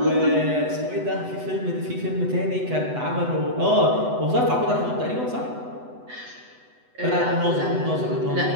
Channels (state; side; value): late; left; 8.0 ms